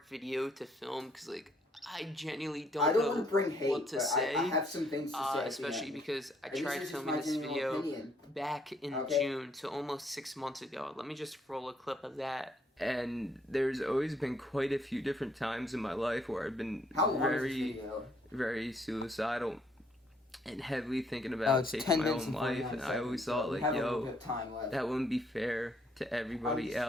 video to film because like I genuinely don't know want to bring hate, what to say. I have some things to say. Especially because I And tried this is just filming my this genuine video opinion. back in Okay. June, so almost 6 months ago. Let me just roll a clip of that. And there's always been quite a few different times in my life where I've been How long is this video? very suicidal and heavily thinking about taking my own life, and I always thought like, yo, that wouldn't be fair to everybody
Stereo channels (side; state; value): both; normal; correlation 0.68